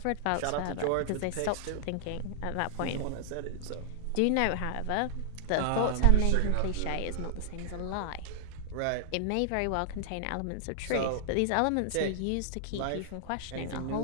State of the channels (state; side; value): different; both; correlation -0.01